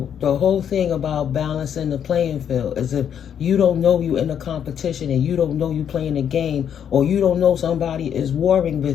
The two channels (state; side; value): quieter; right; 8.7 dB